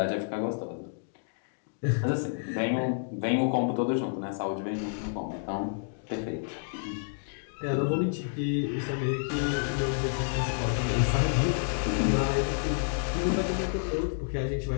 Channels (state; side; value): silent; right; digital silence